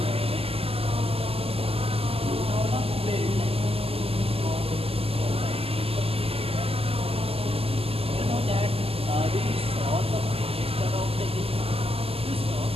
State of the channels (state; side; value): late; left; 0.28 ms